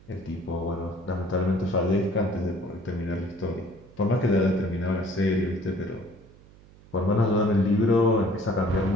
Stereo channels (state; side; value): noise; right; hum, 24 dB below the sound